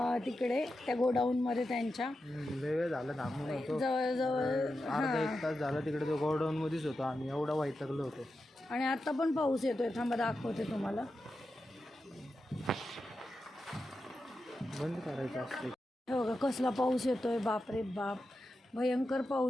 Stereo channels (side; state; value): both; normal; correlation 0.90